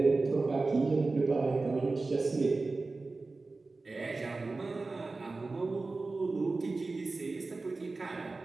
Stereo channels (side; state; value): left; quieter; 3.6 dB